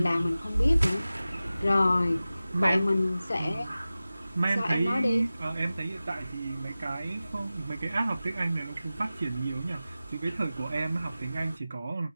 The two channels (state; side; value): inverted; both; correlation -0.96